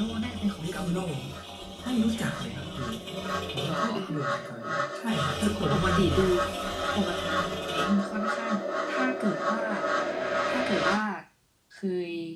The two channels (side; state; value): both; identical; correlation 1.00